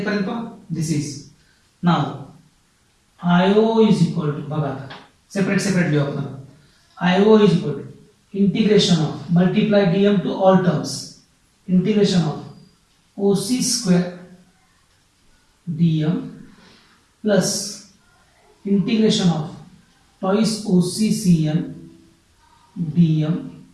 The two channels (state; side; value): identical; both; correlation 1.00